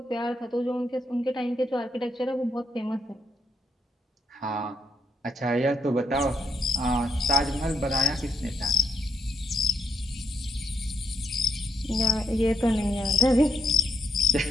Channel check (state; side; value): normal; both; correlation 0.78